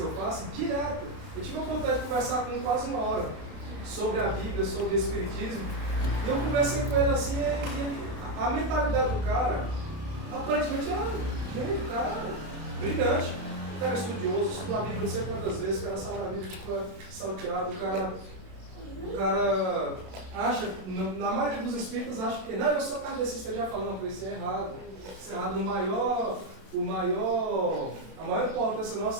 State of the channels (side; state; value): left; late; 32 ms